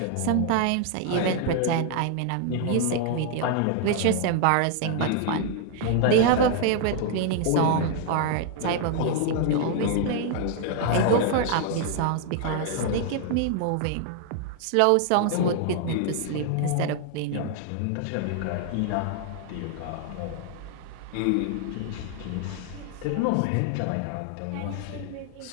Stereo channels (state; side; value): different; both; correlation 0.00